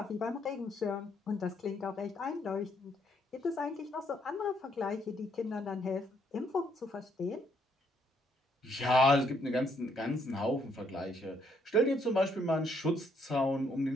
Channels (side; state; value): both; normal; correlation 0.71